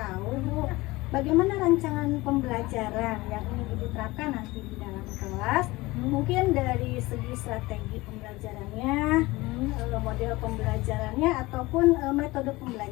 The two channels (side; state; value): right; quieter; 20.8 dB